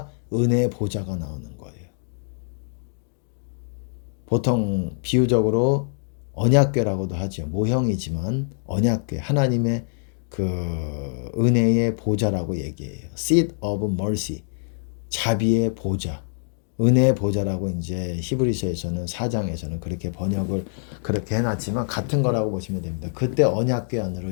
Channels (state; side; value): silent; right; 58 dB below the other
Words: 은혜의 보좌가 나오는 거예요. 보통 비유적으로 언약궤라고도 하죠. 모형이지만 언약궤 하나님의 그 은혜의 보좌라고 얘기해요. Seat of mercy 자비의 보좌 은혜의 보좌라고 이제 히브리서에서는 4장에서는 그렇게 번역을 그렇게 해놨지만 같은 거라고 보시면 됩니다. 그때 언약궤